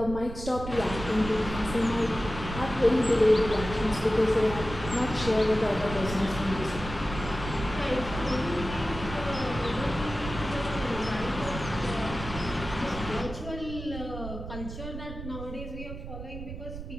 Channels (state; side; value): noise; right; rumble, 9 dB below the sound